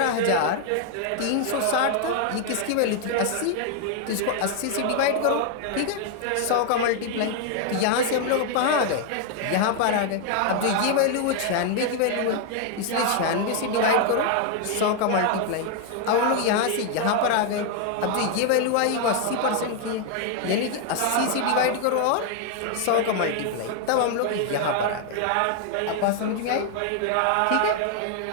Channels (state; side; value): different; both; correlation 0.00